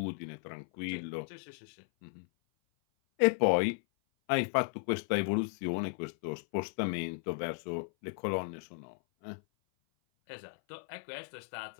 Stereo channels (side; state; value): right; silent; 54 dB below the other